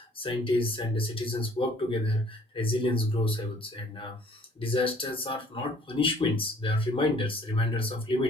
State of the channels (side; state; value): both; normal; correlation 0.57